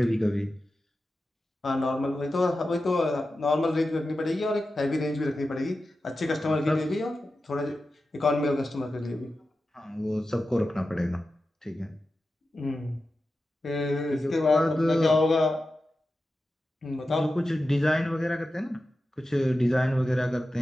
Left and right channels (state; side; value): normal; both; correlation 0.92